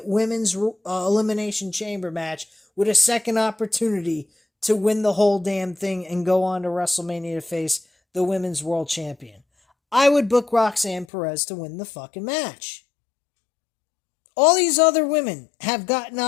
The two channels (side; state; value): right; drops out; at 11.1 s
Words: Women's Elimination Chamber match with a second opportunity to win the whole damn thing and go on to WrestleMania to face the Women's World Champion. I would book Roxanne Perez to win the fucking match. All these other women have gotten